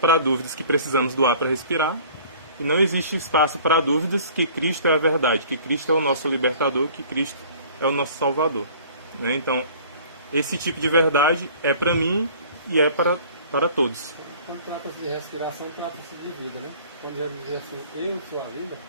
dúvidas que precisamos do ar para respirar, e não existe espaço para dúvidas que Cristo é a verdade, que Cristo é o nosso libertador, que Cristo é o nosso salvador. Né? Então, esse tipo de verdade é para mim e é para todos. Quando trata-se de respiração, trata-se de vida, né? Quando Jesus diz assim, eu sou a vida,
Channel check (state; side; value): inverted; both; correlation -0.49